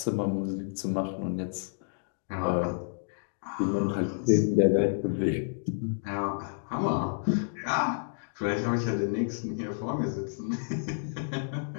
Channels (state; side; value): silent; right; digital silence